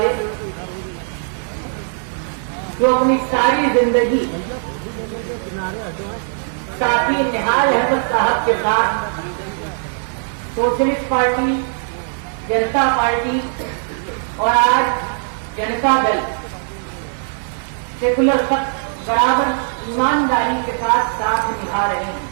जो अपनी सारी जिंदगी साथी निहाल अहमद साहब के साथ सोशलिस्ट पार्टी, जनता पार्टी और आज जनता दल सेकुलर तक बराबर ईमानदारी के साथ साथ निभा रहे हैं,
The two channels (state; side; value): silent; left; 66 dB below the other